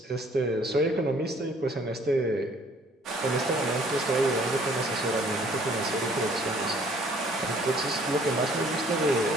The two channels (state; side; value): normal; both; correlation 0.58